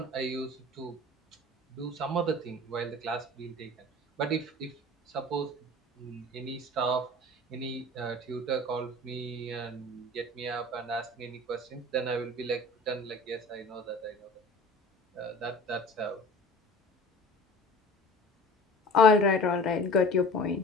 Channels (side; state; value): both; normal; correlation 0.41